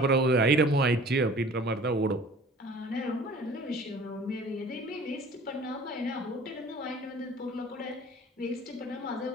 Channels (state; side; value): normal; both; correlation 0.47